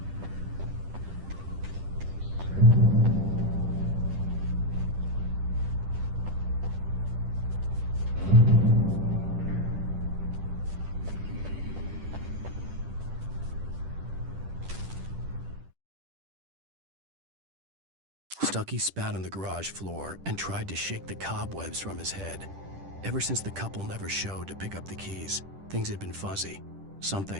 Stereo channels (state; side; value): late; left; 10 ms